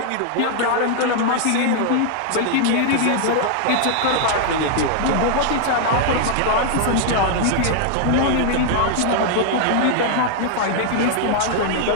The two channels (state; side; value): different; both; correlation 0.00